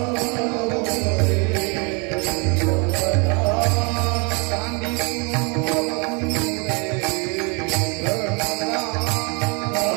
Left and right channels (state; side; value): quieter; left; 33.1 dB